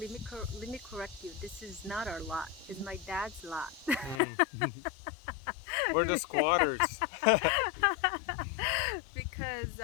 let me correct you. This is not our lot. It's my dad's lot. Mm. We're the squatters. Because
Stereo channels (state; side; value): drops out; right; at 4.2 s